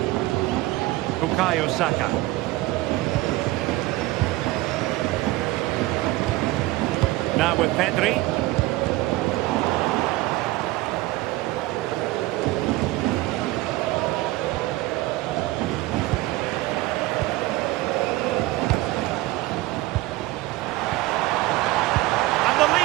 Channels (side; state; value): left; quieter; 18.5 dB